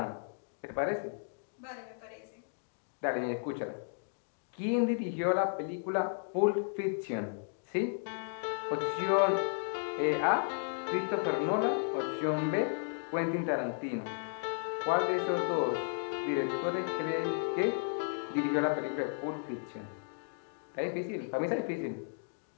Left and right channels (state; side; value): silent; right; digital silence